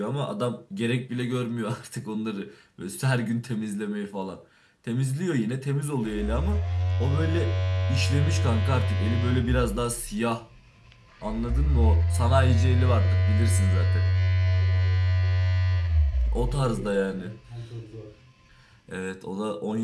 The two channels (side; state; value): both; identical; correlation 1.00